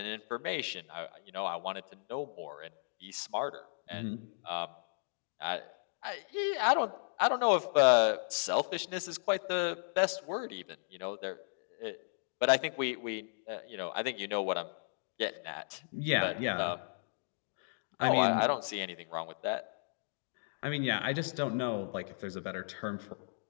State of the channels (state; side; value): silent; right; digital silence